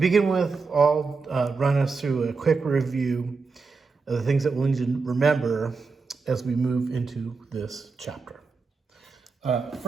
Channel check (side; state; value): left; quieter; 4.5 dB